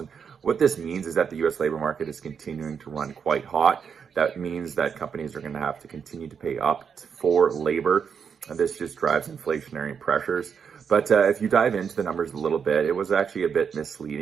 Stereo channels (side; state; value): left; quieter; 6.8 dB